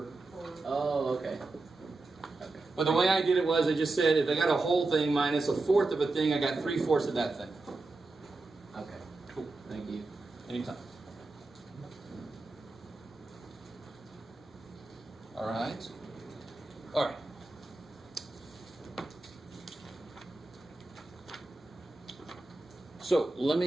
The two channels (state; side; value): quieter; left; 3.2 dB